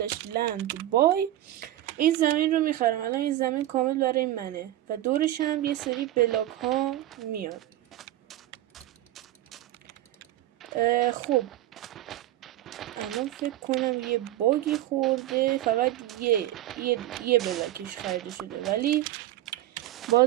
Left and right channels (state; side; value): quieter; left; 14.4 dB